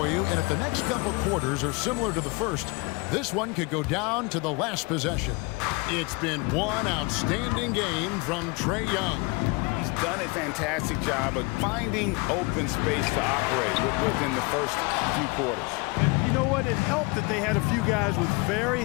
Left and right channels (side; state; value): right; quieter; 27.7 dB